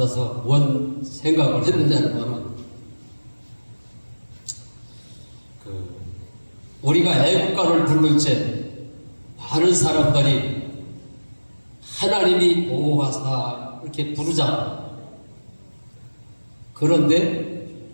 뭔 생각을 했느냐는 우리가 애국가를 부를 때 많은 사람들이 하나님이 보호하사 이렇게 부르잖아. 그런데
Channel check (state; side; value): inverted; both; correlation -1.00